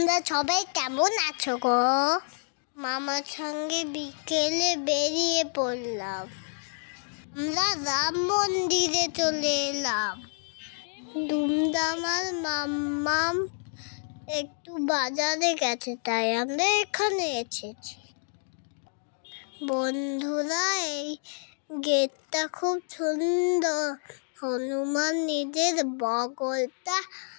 সবাই কেমন আছো গো? মামার সঙ্গে বিকেলে বেরিয়ে পড়লাম। আমরা রাম মন্দিরে চলে এলাম। দুমদাম আর মাম্মাম একটু বাজারে গেছে, তাই আমরা এখানে এসেছি। বন্ধুরা, এই গেটটা খুব সুন্দর। হনুমান নিজের বগলটা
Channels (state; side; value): silent; right; digital silence